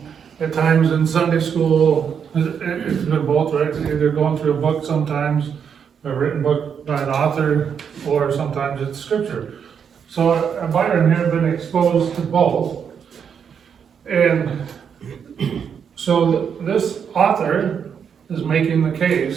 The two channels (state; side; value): quieter; left; 7.3 dB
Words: at times in Sunday school, it's been both, right? It's either going through a book sometimes, a written book by an author, or sometimes it's scripture. So Byron had been exposed to both. And so this author is making the